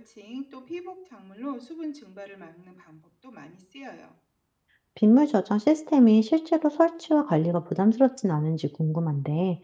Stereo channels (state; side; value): identical; both; correlation 1.00